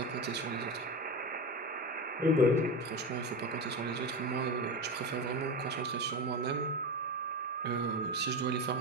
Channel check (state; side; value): normal; both; correlation 0.21